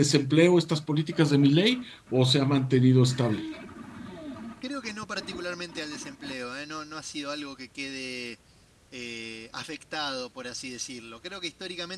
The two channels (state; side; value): identical; both; correlation 1.00